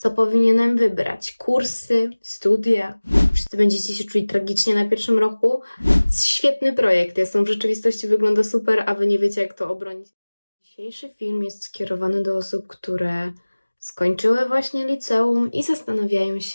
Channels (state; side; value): inverted; both; correlation -1.00